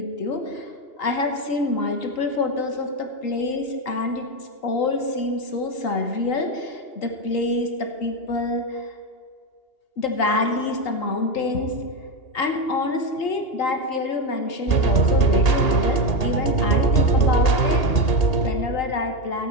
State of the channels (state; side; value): late; right; 2.8 ms